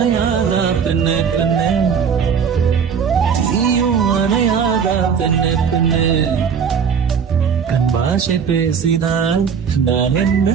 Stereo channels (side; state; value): left; quieter; 6.8 dB